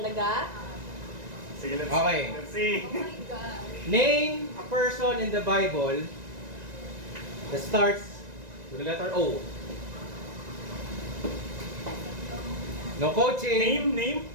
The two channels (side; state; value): left; late; 1.9 ms